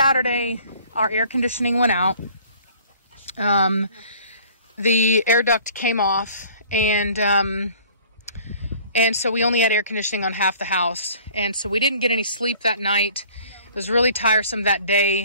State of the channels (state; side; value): inverted; both; correlation -0.52